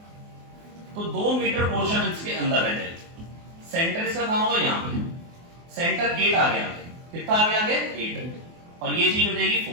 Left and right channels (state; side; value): late; left; 24 ms